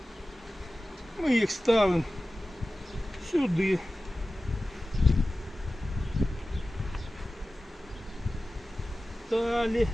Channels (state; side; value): normal; both; correlation 0.96